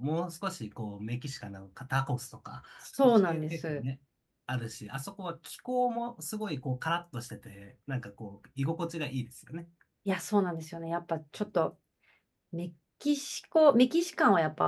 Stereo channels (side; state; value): both; identical; correlation 1.00